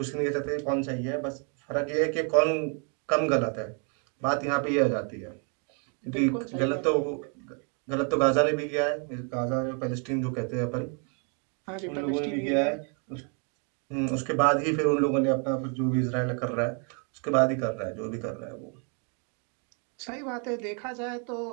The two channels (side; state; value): left; quieter; 39.2 dB